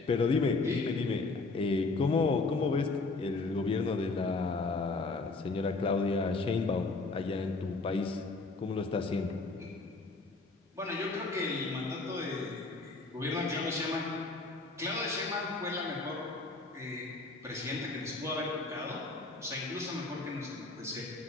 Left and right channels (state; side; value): quieter; right; 3.6 dB